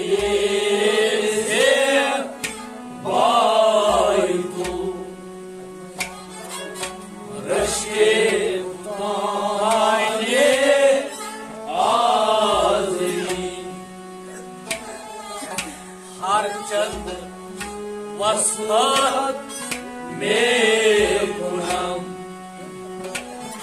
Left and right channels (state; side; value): identical; both; correlation 1.00